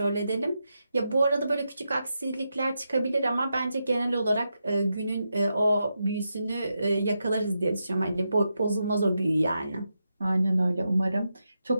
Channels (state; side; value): inverted; both; correlation -0.86